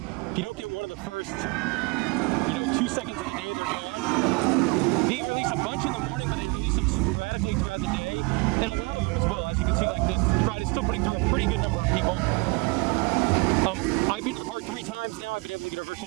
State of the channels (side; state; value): left; quieter; 28.9 dB